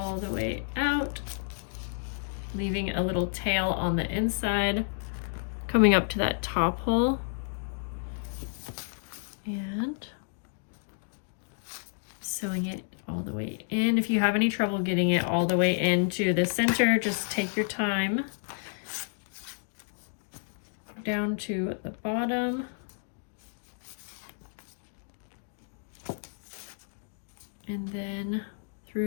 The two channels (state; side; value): silent; right; digital silence